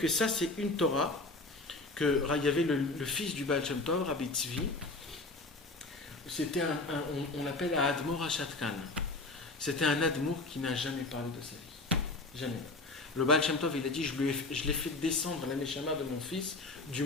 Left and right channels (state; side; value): quieter; right; 3.2 dB